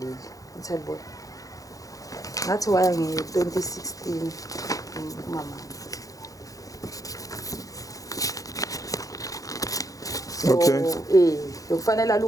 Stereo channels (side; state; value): right; late; 0.17 ms